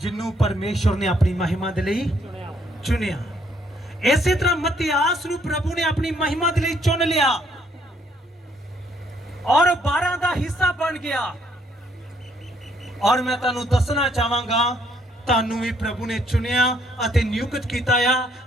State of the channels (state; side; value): normal; both; correlation 0.68